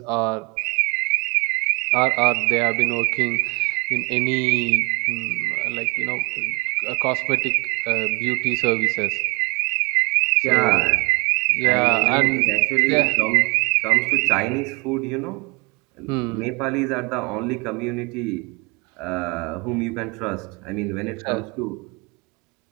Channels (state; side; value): quieter; left; 29.9 dB